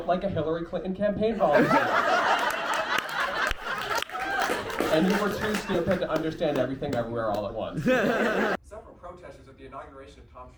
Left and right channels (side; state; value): both; identical; correlation 1.00